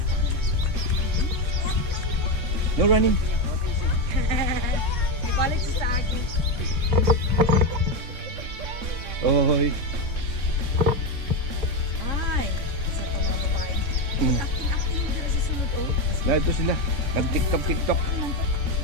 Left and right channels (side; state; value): left; late; 3.6 ms